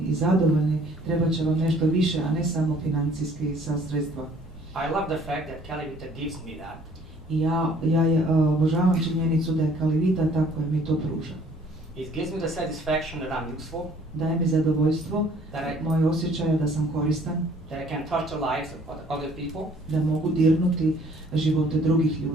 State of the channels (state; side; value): normal; both; correlation 0.57